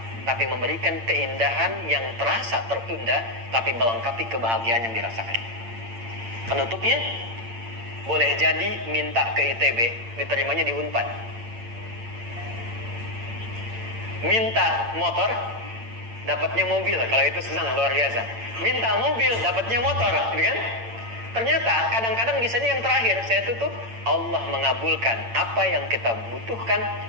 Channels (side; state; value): left; late; 8.8 ms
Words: tapi memberikan keindahan yang terasa tertunda, tapi melengkapi kebahagiaan yang dirasakan. Penutupnya, boleh jadi minta ke ITB, diterimanya di Unpad. Minta motor, dapatnya mobil, kalau itu senang luar biasa. Minta mobil, dapatnya motor, gitu kan? Ternyata kadang-kadang bisanya yang terakhir, saya tutup, Allah mengabulkan apa yang kita butuhkan,